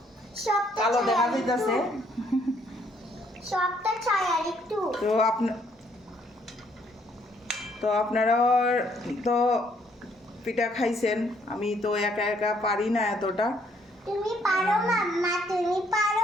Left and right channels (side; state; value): both; normal; correlation 0.67